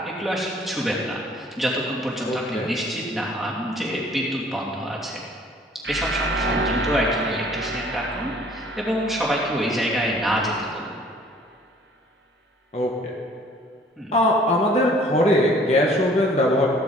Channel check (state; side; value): normal; both; correlation 0.55